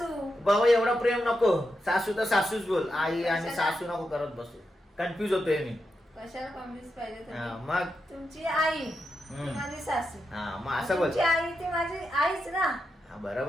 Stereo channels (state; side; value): normal; both; correlation 0.86